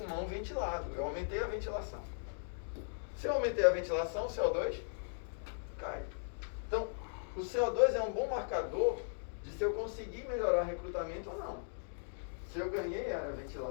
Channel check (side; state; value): right; silent; digital silence